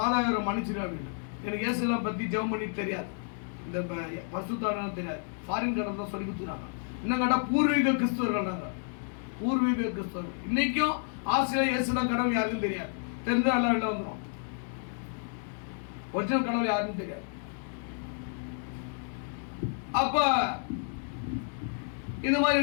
மன்னிச்சிரு அப்படின்னு. எனக்கு இயேசுலாம் பற்றி ஜெபம் பண்ணி தெரியாது, இந்த பரிசுத்தான தெரியாது. ஃபாரின் கடை தான் சொல்லி கொடுத்துறாங்க. இன்னும் கேட்டால் பூர்வீக கிறிஸ்துவர்கள் நாங்கள், பூர்வீக கிறிஸ்துவர்கள். இன்னைக்கும் ஆசிரியர் இயேசுதான் கடவுள் யாருக்கும் தெரியாது. தெரிஞ்சால் எல்லாம் வெளில வந்துடும். ஒரிஜினல் கடவுள் யாருன்னு தெரியாது. அப்ப இந்த மாதிரி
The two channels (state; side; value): silent; right; 57 dB below the other